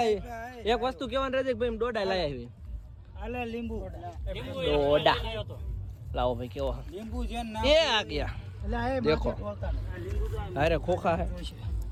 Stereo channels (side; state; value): both; identical; correlation 1.00